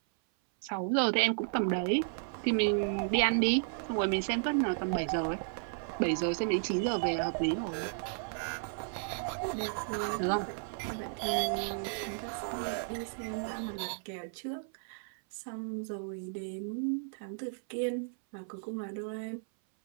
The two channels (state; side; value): silent; left; 55 dB below the other